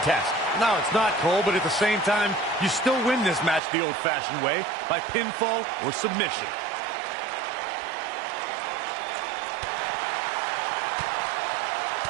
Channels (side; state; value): left; drops out; at 3.6 s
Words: No, it's not, Cole, but at the same time, you still win this match the old-fashioned way, by pinfall or submission.